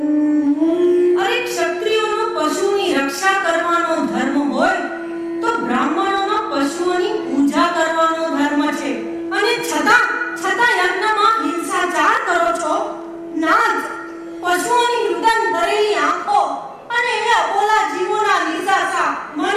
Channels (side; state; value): both; identical; correlation 1.00